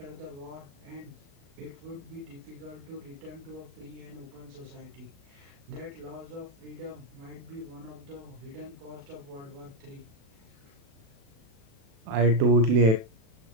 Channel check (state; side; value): late; left; 36 ms